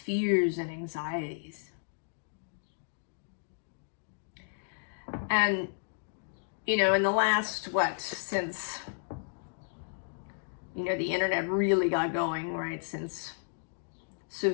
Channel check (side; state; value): right; silent; digital silence